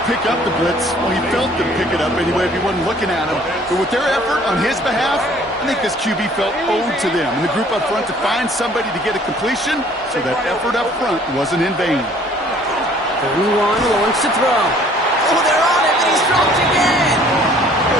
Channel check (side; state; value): both; normal; correlation 0.56